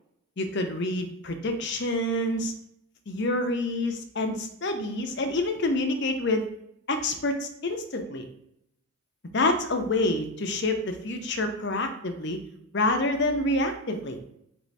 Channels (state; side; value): normal; both; correlation 0.12